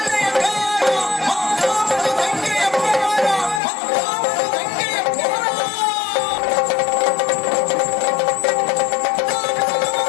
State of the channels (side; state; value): right; drops out; at 3.6 s